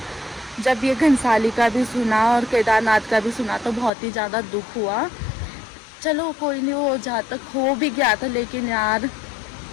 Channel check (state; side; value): drops out; right; at 3.9 s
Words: जब ये घनसाली का भी सुना और केदारनाथ का भी सुना, तो बहुत ही ज़्यादा दुख हुआ। चलो कोई नहीं, वो जहाँ तक हो भी गया था, लेकिन यार